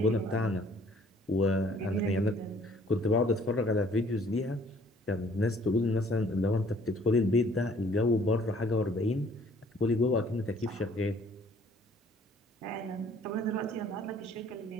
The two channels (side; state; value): both; normal; correlation 0.58